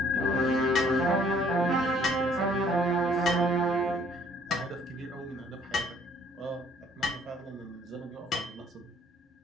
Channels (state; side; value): normal; both; correlation 0.61